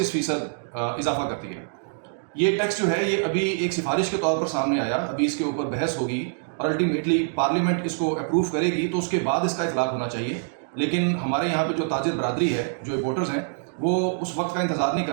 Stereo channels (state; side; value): silent; left; digital silence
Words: इजाफा कर दिया। ये टैक्स जो है ये अभी एक सिफारिश के तौर पर सामने आया, अभी इसके ऊपर बहस होगी और अल्टीमेटली पार्लियामेंट इसको अप्रूव करेगी तो उसके बाद इसका इतलाक होना चाहिए। लेकिन हमारे यहाँ पे जो ताजिर बरादरी है, जो इम्पोर्टर्स हैं, वो उस वक्त का इंतज़ार नहीं